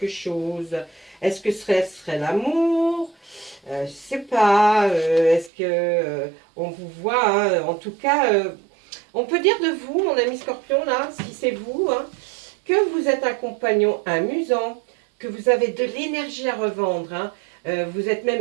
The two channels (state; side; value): drops out; left; at 5.5 s